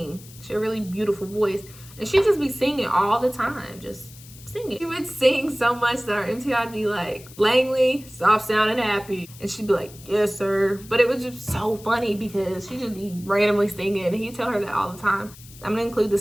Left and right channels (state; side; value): noise; left; hiss, 20 dB below the sound